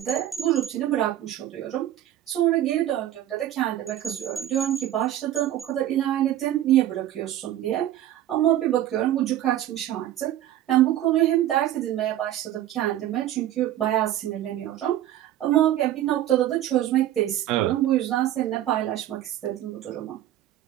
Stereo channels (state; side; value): quieter; left; 12.7 dB